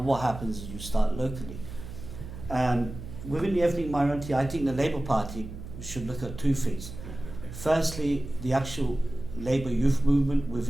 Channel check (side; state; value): right; noise; hum, 11 dB below the sound